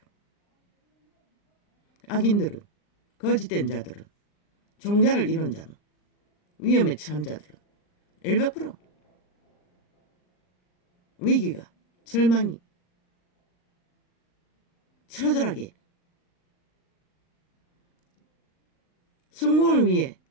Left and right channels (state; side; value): late; right; 39 ms